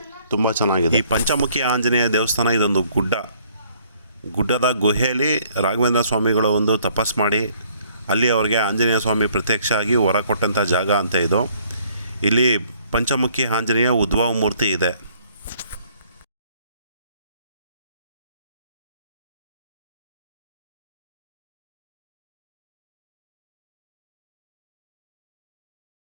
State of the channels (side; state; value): both; inverted; correlation -0.62